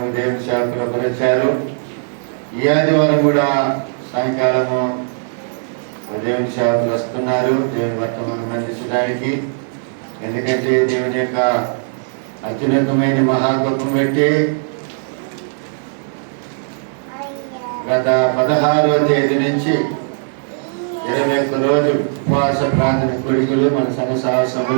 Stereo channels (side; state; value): left; silent; 58 dB below the other